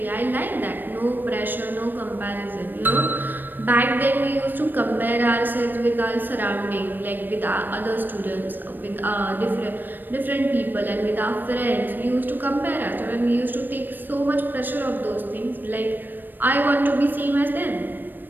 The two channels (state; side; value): late; left; 0.092 ms